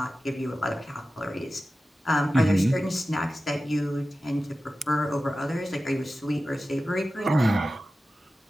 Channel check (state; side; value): normal; both; correlation 0.94